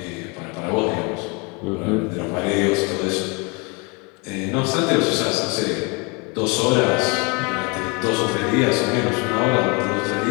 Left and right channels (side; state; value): right; quieter; 29.7 dB